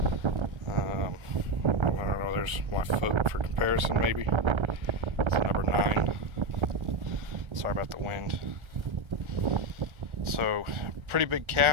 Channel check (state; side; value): late; left; 1.3 ms